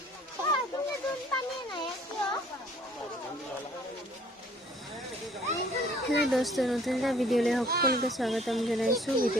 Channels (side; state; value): both; normal; correlation 0.57